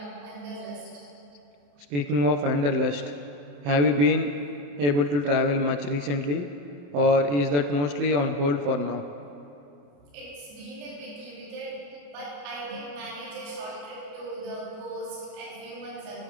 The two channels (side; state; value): left; late; 28 ms